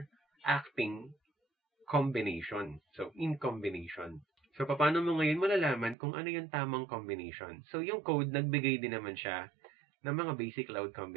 acting combination. So, in combination. So, paano mo ngayon malalaman kung ano yung tamang combination? So, yung code, nagbigay din naman siya ng mga basic load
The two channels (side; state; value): left; drops out; at 6.0 s